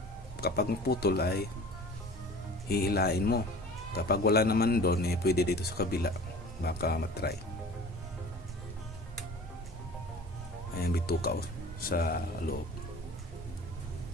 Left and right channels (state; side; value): normal; both; correlation 0.42